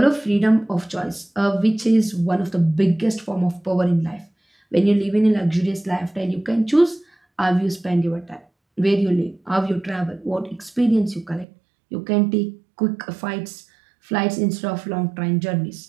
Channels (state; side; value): drops out; left; at 11.5 s